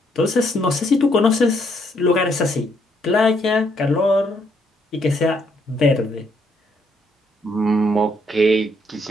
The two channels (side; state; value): both; normal; correlation 0.72